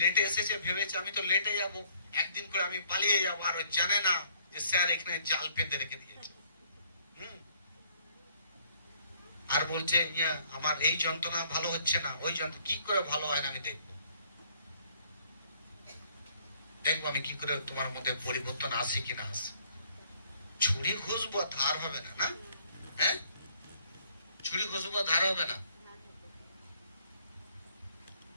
এসেছে ভেবেছে আমি তো লেটে যাব, একদিন করে আমি পালিয়ে যাবো, আর জানে না যে স্যার এখানে জাল পেতে রেখে দিয়েছে। আর বলছে আমার এই যন্ত্রণা ভালো হচ্ছে না, ওই যন্ত্রণা কি করে ভালো হয় না আমি দেখবো আমি কি করে তোমার মধ্যে পরিবর্তন আসে কিনা আসে। ছুরি ঘুষবো ধার হবে না, না হ্যাঁ, ছুরি ঘুষবো ধার হবে না।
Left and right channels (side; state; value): both; inverted; correlation -0.64